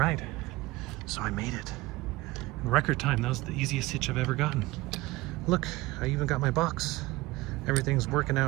So I made it. In record time, that was the easiest hitch I've ever gotten. Look, I even got my box. Everything's working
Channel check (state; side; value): quieter; left; 19.9 dB